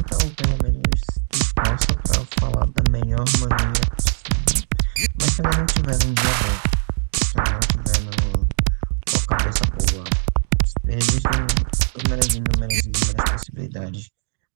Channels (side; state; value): left; silent; digital silence